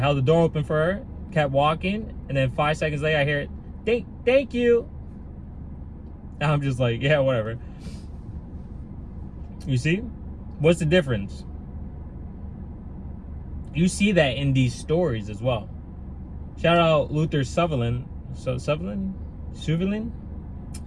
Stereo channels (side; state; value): both; identical; correlation 1.00